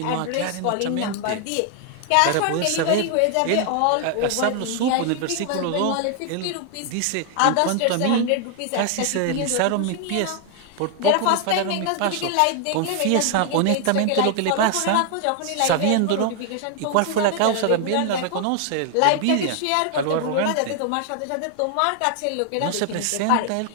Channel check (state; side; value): different; both; correlation 0.00